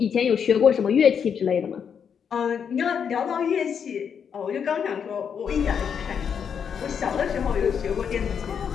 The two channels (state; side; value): quieter; right; 7.3 dB